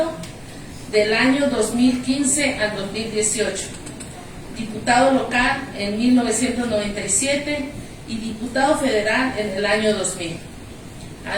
del año 2015 al 2018. Diputado local en 1997 y diputado federal en el año 2000.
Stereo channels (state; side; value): identical; both; correlation 1.00